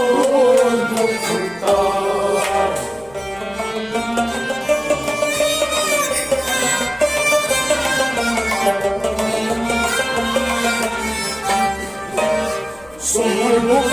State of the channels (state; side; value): noise; left; rumble, 26 dB below the sound